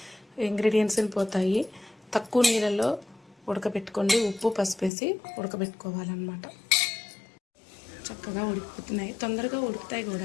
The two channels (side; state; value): right; drops out; at 4.9 s